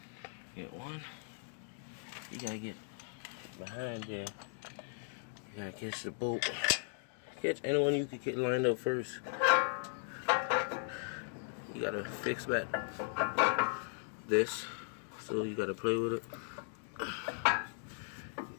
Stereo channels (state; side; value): silent; right; digital silence